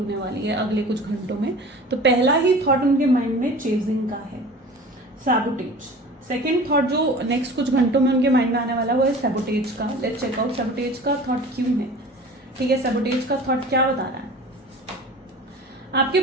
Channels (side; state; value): both; normal; correlation 0.40